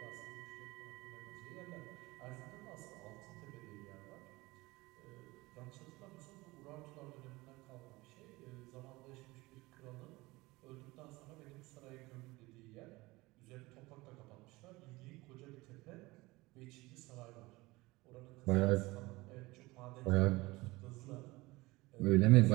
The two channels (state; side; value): quieter; left; 21.4 dB